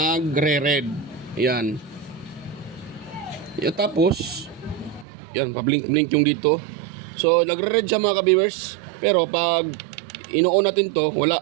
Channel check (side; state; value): left; drops out; at 5.1 s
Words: Yan. Yan, tapos yan, pa-blink yung dito. So nagre-red siya mga ka-viewers. Pero pag ino-on natin to, wala.